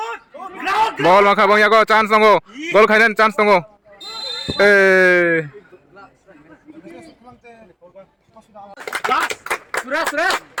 Ball maka bang yago chance tunggu. Goal kainan chance tunggu. Sudah.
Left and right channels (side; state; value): both; identical; correlation 1.00